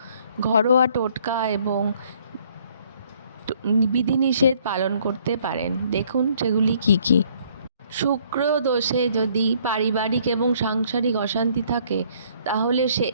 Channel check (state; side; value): inverted; both; correlation -0.62